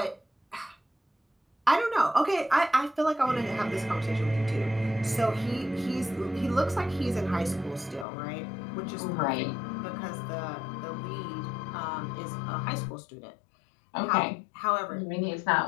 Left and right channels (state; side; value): drops out; right; at 8.1 s